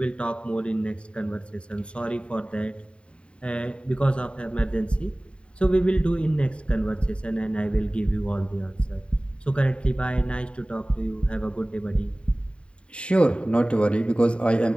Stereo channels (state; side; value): late; right; 0.056 ms